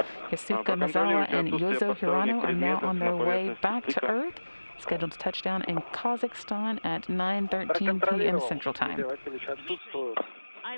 Yusaku, Maezawa, and Yozo Hirano are now on their way back to Earth, scheduled to touch down in Kazakhstan at 9:13 p.m. Central Time. I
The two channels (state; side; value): inverted; both; correlation -1.00